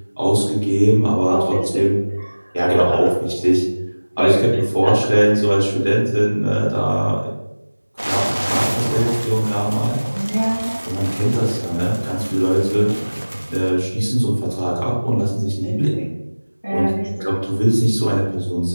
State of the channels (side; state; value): both; inverted; correlation -1.00